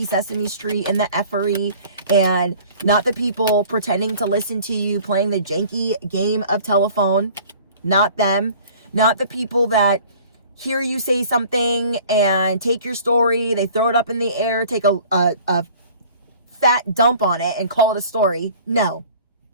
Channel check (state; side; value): inverted; both; correlation -0.48